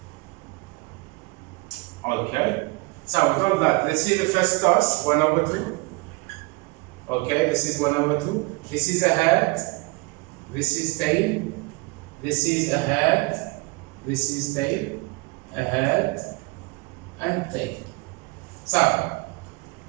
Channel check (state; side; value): quieter; left; 26.4 dB